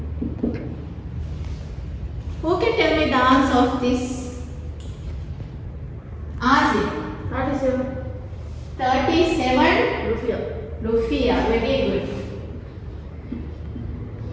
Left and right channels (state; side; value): identical; both; correlation 1.00